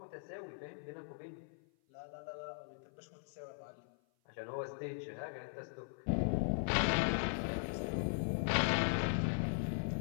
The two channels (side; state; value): right; silent; 51 dB below the other